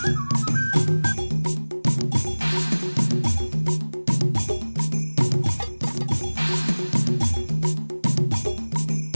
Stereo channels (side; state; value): both; inverted; correlation -1.00